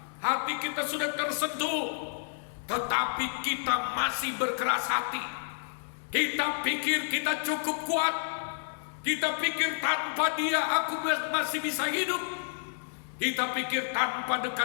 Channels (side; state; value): right; silent; digital silence